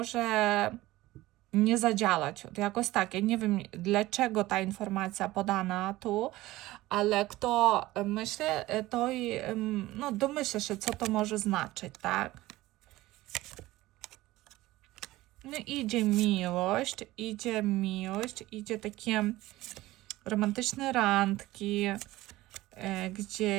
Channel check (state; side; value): quieter; left; 17.7 dB